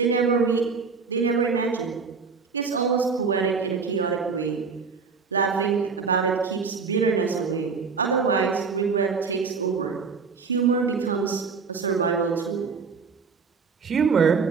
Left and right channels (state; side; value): quieter; left; 5.2 dB